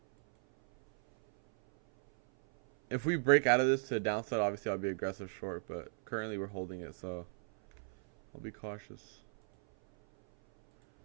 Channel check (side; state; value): left; silent; 54 dB below the other